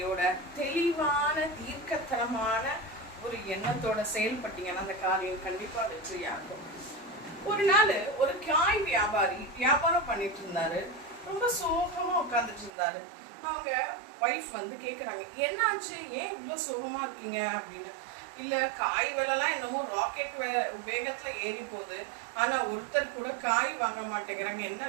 தெளிவான தீர்க்கத்தனமான ஒரு எண்ணத்தோட செயல்பட்டீங்கன்னா அந்த காரியம் கண்டிப்பா வெற்றியாகும். ஒரு நாள் ஒரு காய் வியாபாரி வியாபாரம் பண்ணிட்டு இருந்தாரு. ரொம்ப சோகமா உட்காந்துட்டு இருந்தாரு. அவங்க வைஃப் வந்து கேக்குறாங்க, என்னாச்சு, ஏன் இவ்வளவு சோகமா இருக்கீங்க அப்படின்னு. இல்ல, காய் விலைலாம் என்னமோ ராக்கெட் வேகத்துல ஏறி போகுது, ஆனா ஒருத்தர் கூட காய் வாங்க மாட்டேங்கிறாங்க, என்ன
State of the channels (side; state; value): left; drops out; at 12.7 s